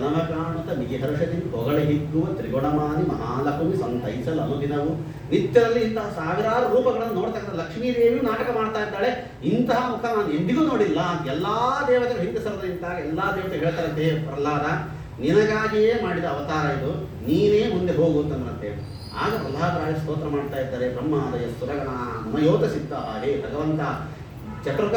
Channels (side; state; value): both; identical; correlation 1.00